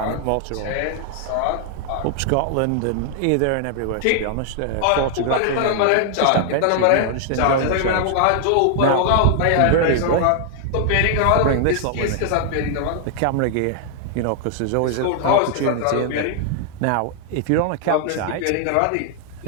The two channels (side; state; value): both; different; correlation 0.00